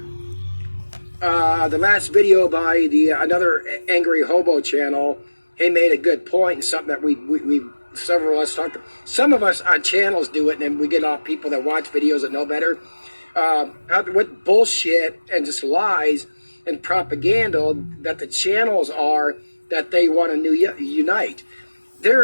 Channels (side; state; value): both; inverted; correlation -1.00